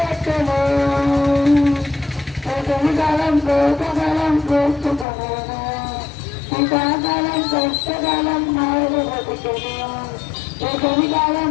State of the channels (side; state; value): right; drops out; at 5.1 s